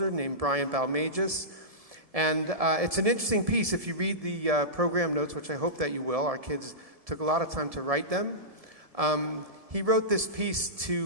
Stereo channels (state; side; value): late; left; 1.7 ms